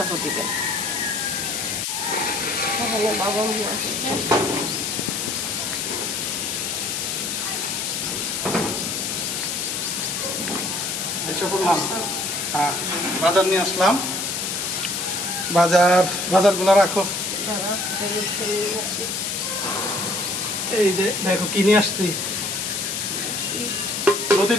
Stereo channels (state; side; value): noise; left; hiss, 2 dB below the sound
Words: দিবেন। বাবা বাজার নিয়ে আসলাম। বাজারগুলো রাখো। এই যে দেখো কি নিয়ে আসছি।